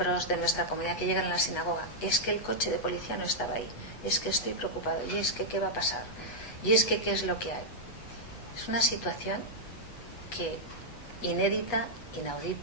de nuestra comunidad que llegan a la sinagoga, es que el coche de policía no estaba ahí, es que estoy preocupado, y es que qué va a pasar, y es que qué es lo que hay. Es una situación que inédita,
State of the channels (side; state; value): right; late; 8.1 ms